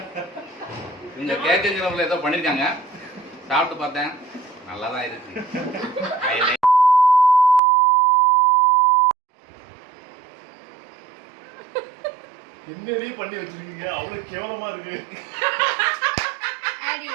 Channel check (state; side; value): drops out; left; at 7.6 s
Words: இவங்க கேச்சேஜில் ஏதோ பண்ணியிருக்காங்க, சாப்பிட்டு பார்த்தேன், நல்லா தான் இருக்கு. என்னடி பண்ணி வச்சிருக்கீங்க? அவ்வளவு கேவலமா இருக்கு. அடி